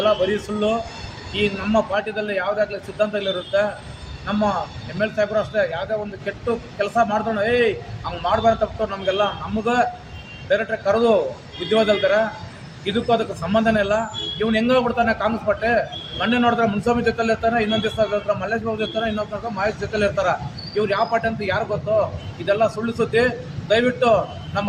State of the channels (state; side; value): identical; both; correlation 1.00